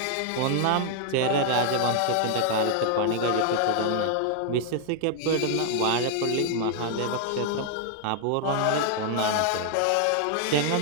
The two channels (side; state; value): both; different; correlation 0.00